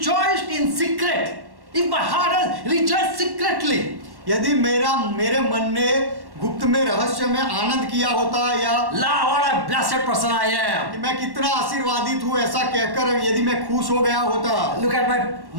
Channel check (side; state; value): left; late; 1.1 ms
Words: in secret. If my heart has rejoiced secretly. यदि मेरे मन ने गुप्त में रहस्य में आनंद किया होता, या What a blessed person I am. कि मैं कितना आशीर्वादित हूँ ऐसा कहकर यदि मैं खुश हो गया होता। Look at